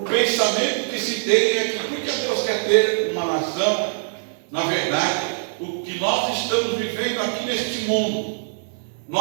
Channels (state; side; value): silent; left; digital silence